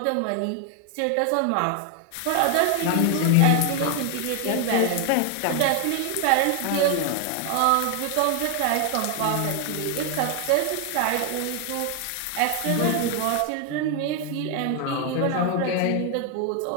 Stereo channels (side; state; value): both; different; correlation 0.00